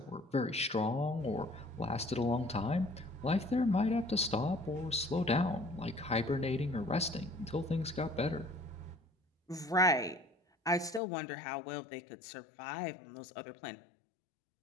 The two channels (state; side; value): drops out; right; at 11.0 s